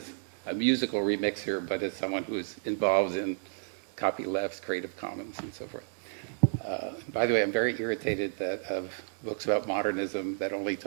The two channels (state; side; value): silent; left; digital silence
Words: a musical remixer, but as someone who's involved in copylefts, Creative Commons, and so forth. By the way, I'm very irritated that of books about modernism that only